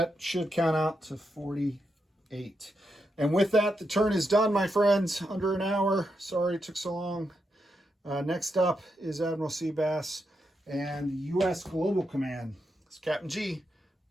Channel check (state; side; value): normal; both; correlation 0.84